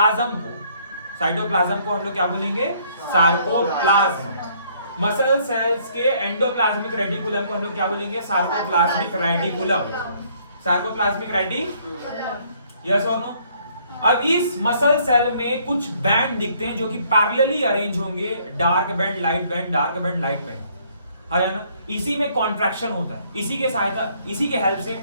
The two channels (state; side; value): inverted; both; correlation -0.64